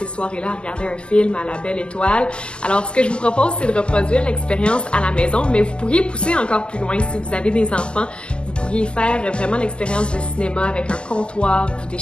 soirées-là à regarder un film à la belle étoile. Alors ce que je vous propose c'est de reproduire l'expérience à la maison, mais vous pourriez pousser encore plus loin si vous avez des enfants. Vous pourriez faire vraiment l'expérience de cinéma avec un comptoir, vous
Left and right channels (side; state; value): right; late; 0.050 ms